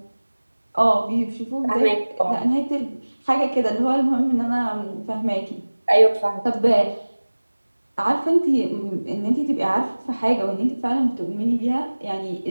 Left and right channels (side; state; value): both; inverted; correlation -1.00